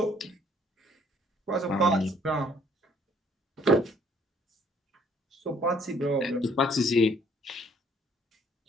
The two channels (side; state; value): both; normal; correlation 0.62